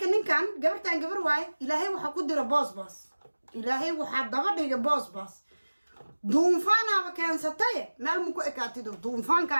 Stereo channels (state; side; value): inverted; both; correlation -1.00